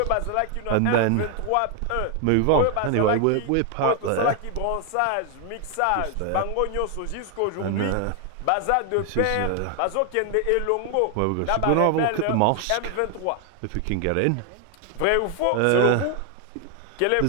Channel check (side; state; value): both; different; correlation 0.00